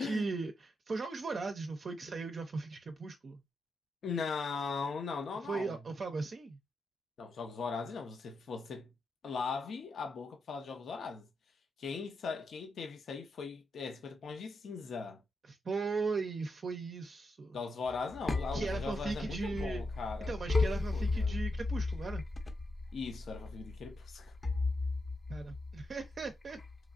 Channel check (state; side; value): normal; both; correlation 0.84